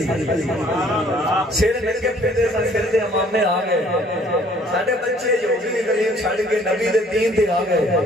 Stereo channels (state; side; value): normal; both; correlation 0.58